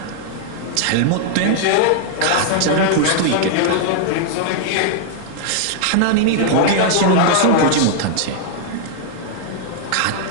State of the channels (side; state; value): both; different; correlation -0.01